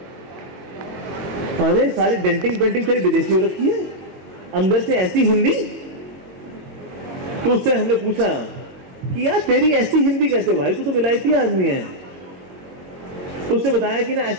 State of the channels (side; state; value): left; late; 22 ms